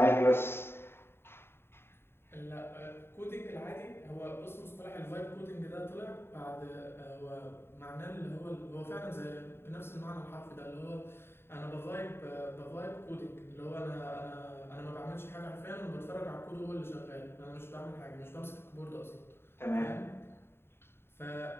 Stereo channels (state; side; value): late; right; 0.11 ms